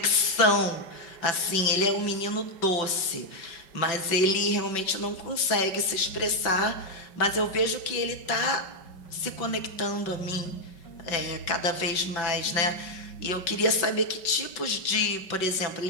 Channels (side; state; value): right; late; 5.3 ms